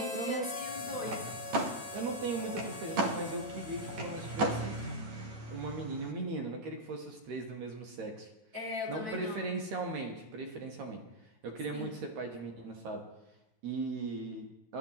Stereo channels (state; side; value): late; left; 9.2 ms